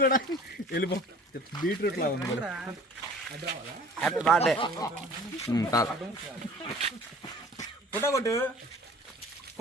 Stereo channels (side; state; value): both; normal; correlation 0.48